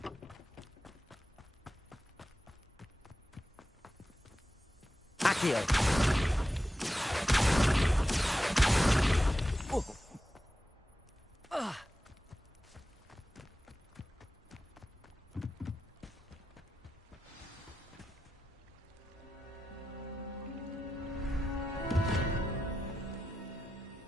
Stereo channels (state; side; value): normal; both; correlation 0.91